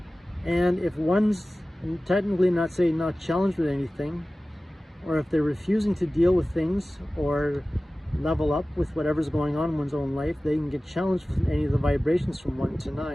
And if one's technically not challenged with anything, or if they're refusing to deal with things or level up with whatever's going on in one's own life, they can get challenged with any of the vibrations from 1 to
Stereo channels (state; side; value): normal; both; correlation 0.97